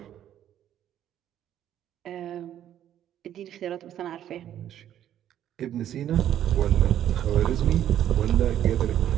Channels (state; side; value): quieter; left; 11.0 dB